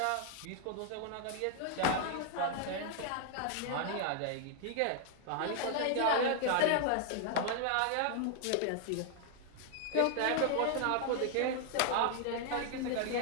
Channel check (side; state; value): both; different; correlation 0.00